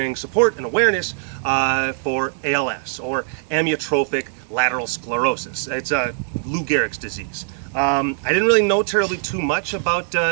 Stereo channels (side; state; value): left; silent; 65 dB below the other